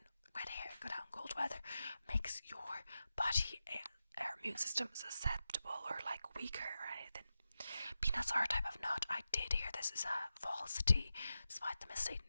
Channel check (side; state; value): both; inverted; correlation -0.91